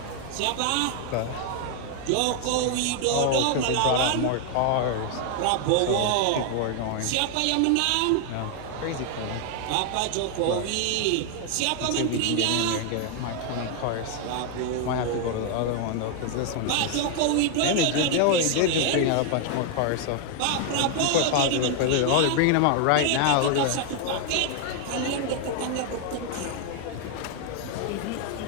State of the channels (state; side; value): different; both; correlation 0.00